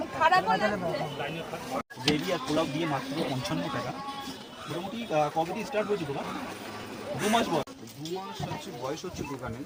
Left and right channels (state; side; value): identical; both; correlation 1.00